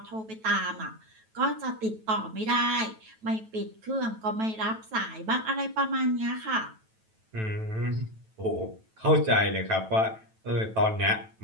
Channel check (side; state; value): left; late; 9.1 ms